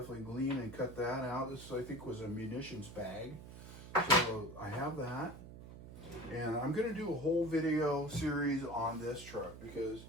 glean and cut that out. This, I think, was a munitions bag. So I have that. And I'm going to do a whole video series on this truck because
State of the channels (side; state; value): right; noise; hum, 14 dB below the sound